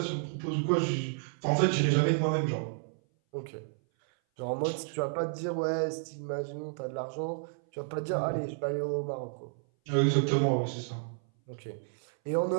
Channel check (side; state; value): left; silent; 57 dB below the other